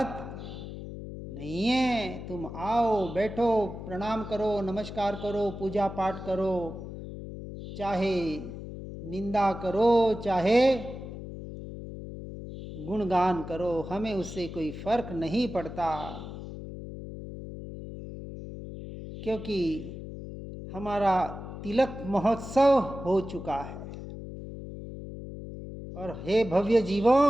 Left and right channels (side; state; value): left; noise; hum, 10 dB below the sound